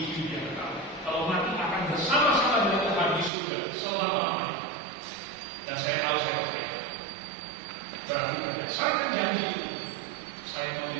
hidup yang kekal. Kalau mati akan bersama-sama dengan Tuhan di surga selama-lamanya. Dan saya tahu saya percaya. Berarti berdasarkan janji itu, saya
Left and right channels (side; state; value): left; drops out; at 3.3 s